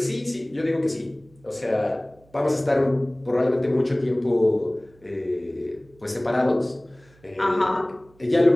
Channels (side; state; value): right; noise; hum, 29 dB below the sound